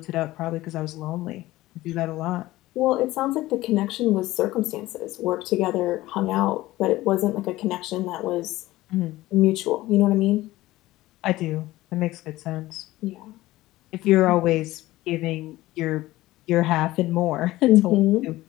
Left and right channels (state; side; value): quieter; right; 17.3 dB